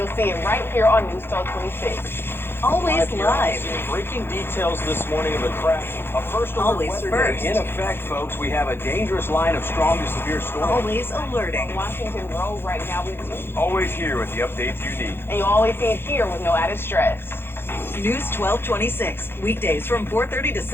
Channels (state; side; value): late; right; 0.11 ms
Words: see it right here on News 1226. Always live. Breaking details this morning of a crash. A first alert Always weather first. day in effect, folks. We have a dangerous line of strong to severe storms. Always alerting. Washington Road right now with you. Always here with the updates you need. And you always see it here with no added stress. News 1226, weekdays from 4:30 to